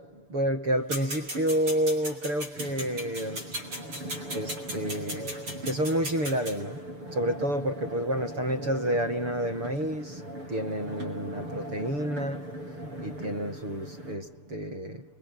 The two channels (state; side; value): late; left; 6.9 ms